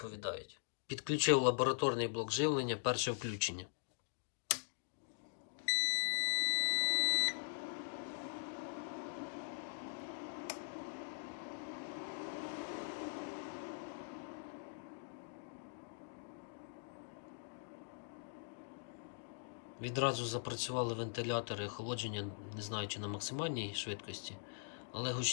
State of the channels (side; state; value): right; silent; digital silence